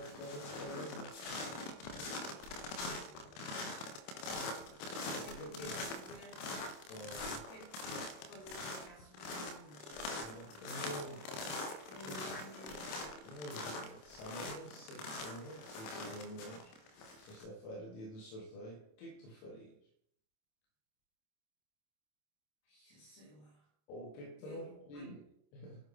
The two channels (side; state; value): right; late; 27 ms